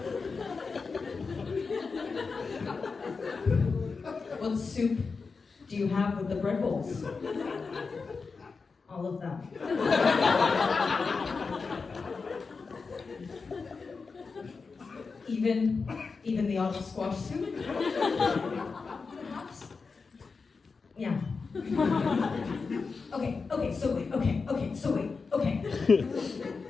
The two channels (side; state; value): right; quieter; 4.7 dB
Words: "What soup do you have with the bread bowls?" "All of them." Even the autumn squash soup? Perhaps? Yeah. Okay, so wait. Let